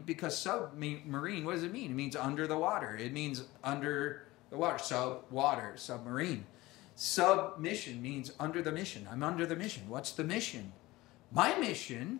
because submarine, what does it mean? It means under the water. It means under the water. Sub-water, submarine. Submission means under the mission. I'm under the mission. What's the mission? My mission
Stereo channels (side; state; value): right; quieter; 19.2 dB